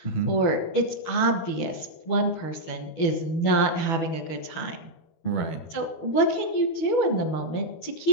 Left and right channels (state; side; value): late; right; 12 ms